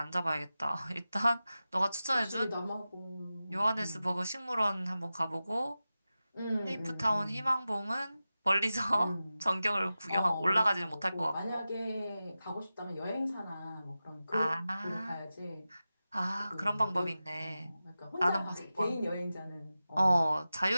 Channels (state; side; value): inverted; both; correlation -0.94